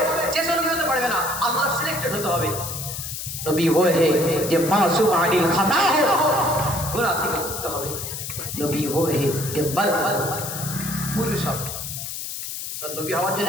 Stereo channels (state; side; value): noise; left; hiss, 7 dB below the sound